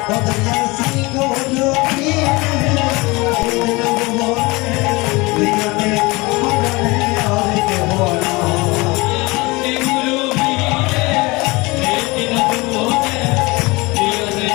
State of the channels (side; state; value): right; quieter; 24.0 dB